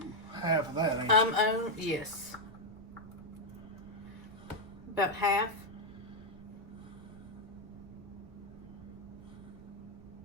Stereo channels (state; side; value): noise; right; rumble, 18 dB below the sound